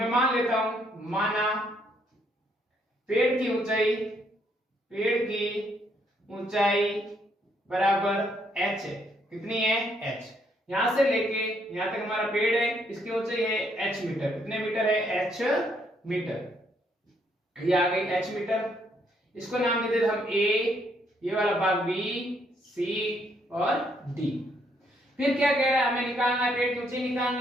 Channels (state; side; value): normal; both; correlation 0.71